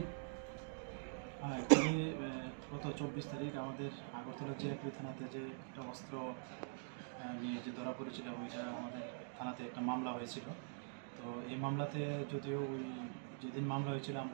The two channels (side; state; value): left; silent; digital silence